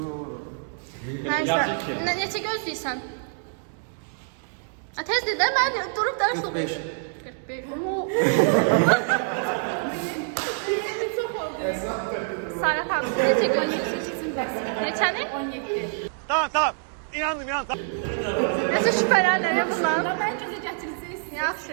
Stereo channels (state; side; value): silent; left; 61 dB below the other